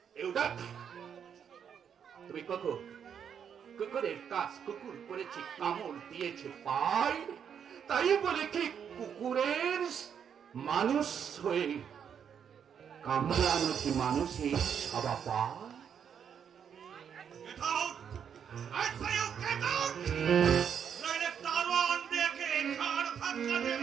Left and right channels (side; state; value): left; quieter; 7.9 dB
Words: তুমি কুকুরের কাজ কুকুর করেছে, কামড় দিয়েছে পায়, তাই বলে কি কুকুরের মানুষ হয়ে কামড়ানো কি মানুষের স্বভাব পায়? Get out! I say you get out! নইলে দারোয়ান দেখে ঘাড় ধাক্কা দিয়ে